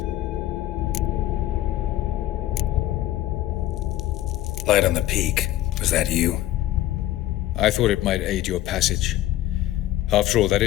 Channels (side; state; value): right; quieter; 14.3 dB